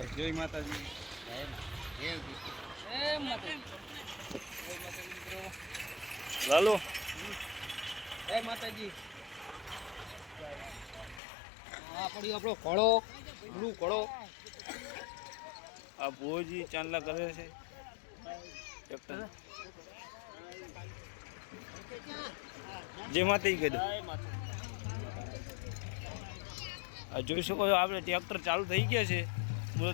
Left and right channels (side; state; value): right; drops out; at 11.2 s